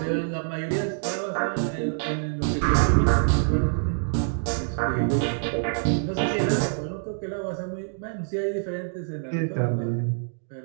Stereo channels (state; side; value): silent; left; digital silence